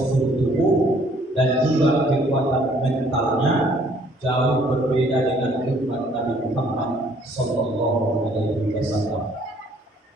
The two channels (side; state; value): both; normal; correlation 0.61